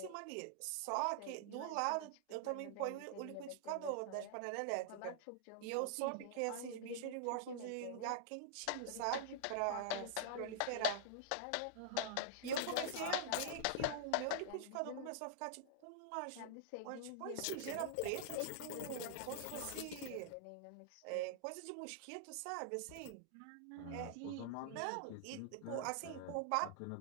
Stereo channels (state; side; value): different; both; correlation -0.01